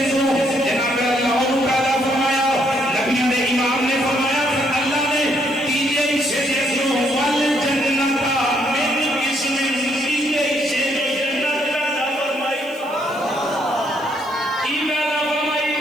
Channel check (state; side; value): noise; left; hiss, 25 dB below the sound